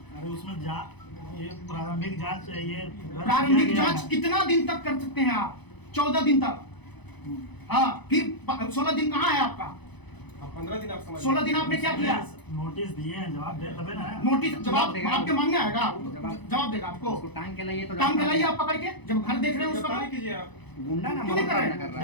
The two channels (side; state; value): right; late; 0.99 ms